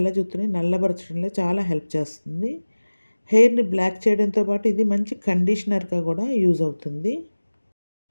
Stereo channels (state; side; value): inverted; both; correlation -1.00